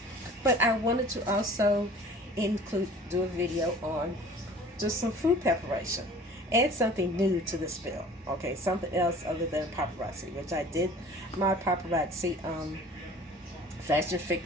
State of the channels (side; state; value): both; normal; correlation 0.47